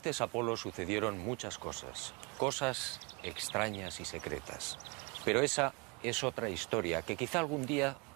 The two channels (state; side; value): quieter; left; 29.6 dB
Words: Apolo sucedieron muchas cosas, cosas extrañas y secretas. Pero esa es otra historia que quizá algún día